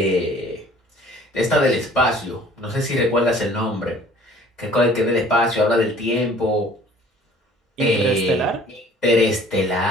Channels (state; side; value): normal; both; correlation 0.52